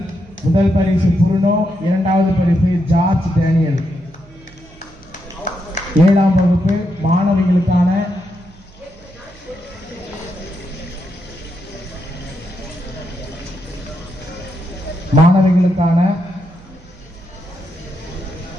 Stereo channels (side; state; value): right; noise; hum, 24 dB below the sound